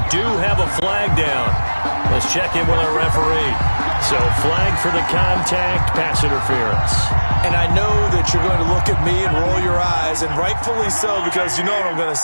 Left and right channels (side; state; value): both; inverted; correlation -1.00